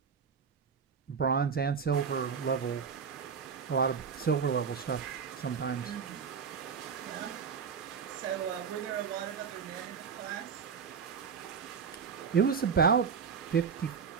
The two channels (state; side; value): quieter; left; 6.3 dB